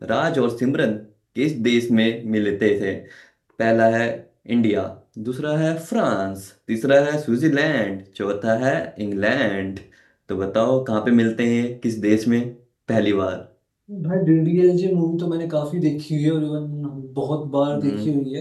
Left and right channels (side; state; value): both; identical; correlation 1.00